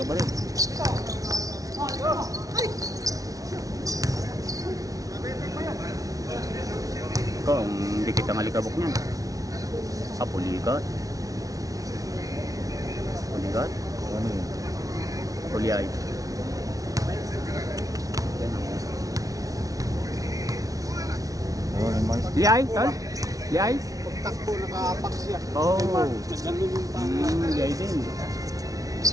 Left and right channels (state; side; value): late; left; 0.17 ms